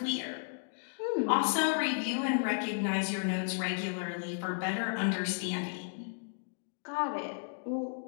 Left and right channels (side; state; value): right; silent; digital silence